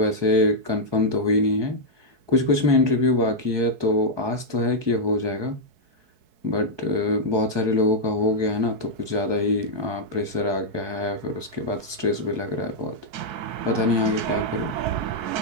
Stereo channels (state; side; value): late; left; 4.6 ms